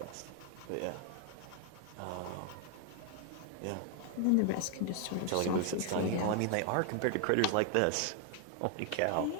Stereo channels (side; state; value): both; different; correlation 0.00